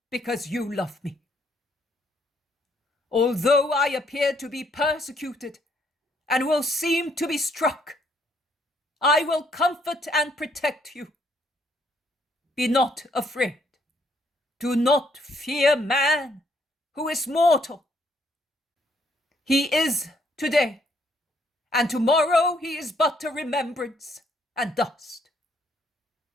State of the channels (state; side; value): normal; both; correlation 0.69